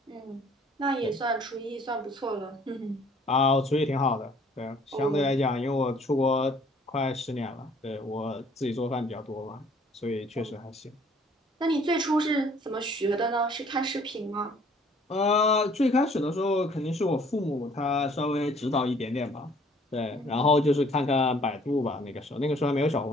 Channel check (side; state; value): both; normal; correlation 0.58